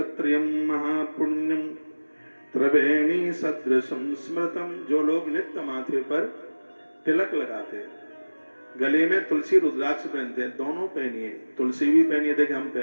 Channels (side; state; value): both; inverted; correlation -1.00